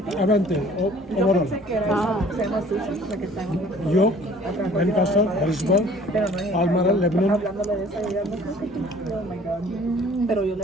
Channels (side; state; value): both; normal; correlation 0.52